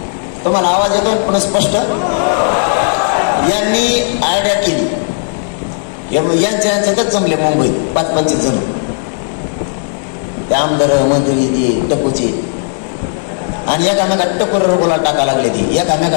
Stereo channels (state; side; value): silent; right; digital silence